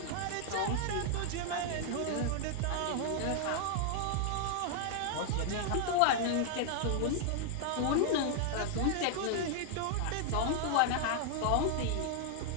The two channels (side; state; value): both; different; correlation 0.00